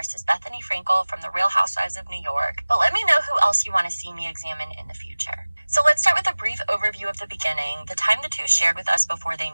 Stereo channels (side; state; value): both; inverted; correlation -1.00